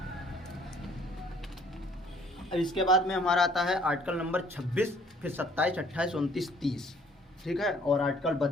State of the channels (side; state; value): both; normal; correlation 0.59